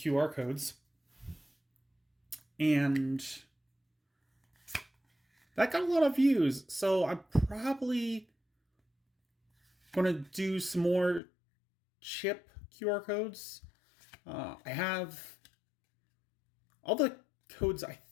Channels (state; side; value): drops out; right; at 11.2 s